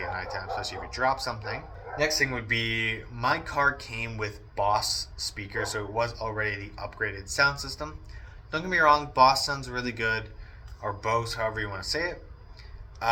at nighttime, especially if you drop something. Next thing would be, my car came with Boss speakers, so it was already the upgraded sound system. Don't get me wrong, Boss sounds really good, or Bose, however you want to say it.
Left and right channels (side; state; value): both; identical; correlation 1.00